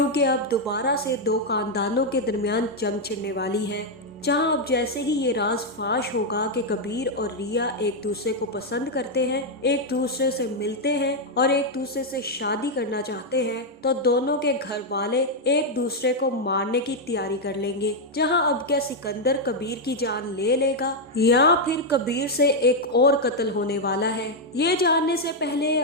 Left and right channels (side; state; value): both; normal; correlation 0.00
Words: अब दोबारा से दो खानदानों के दरमियान जंग छिड़ने वाली है। जहां अब जैसे ही ये राज फाश होगा कि कबीर और रिया एक दूसरे को पसंद करते हैं, एक दूसरे से मिलते हैं और एक दूसरे से शादी करना चाहते हैं, तो दोनों के घर वाले एक दूसरे को मारने की तैयारी कर लेंगे। जहां अब क्या सिकंदर कबीर की जान ले लेगा या फिर कबीर से एक और कत्ल होने वाला है, ये जानने से पहले